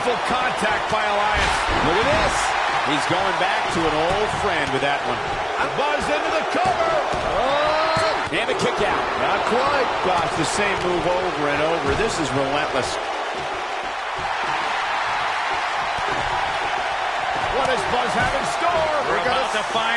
contact by Elias. Look at this. He's going back to an old friend with that one. Buzz into the cover. Oh! And a kick out. Not quite. Gosh, the same move over and over. This is relentless. What does Buzz have in store? We're about to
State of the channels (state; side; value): identical; both; correlation 1.00